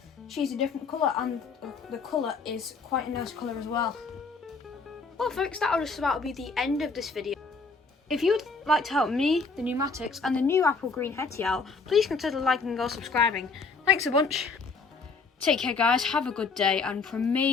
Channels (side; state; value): right; quieter; 4.4 dB